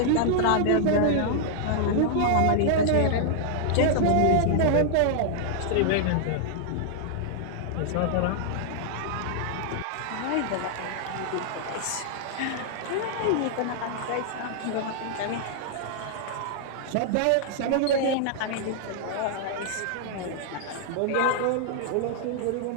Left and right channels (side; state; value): both; different; correlation -0.01